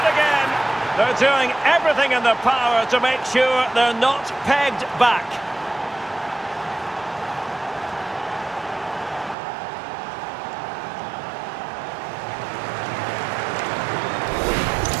again. They're doing everything in their power to make sure they're not pegged back.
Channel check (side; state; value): left; drops out; at 9.3 s